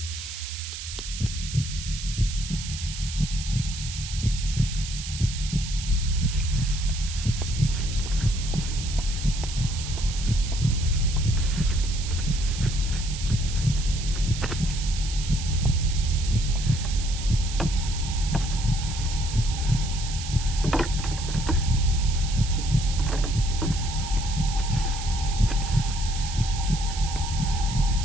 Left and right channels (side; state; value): right; noise; hiss, 9 dB below the sound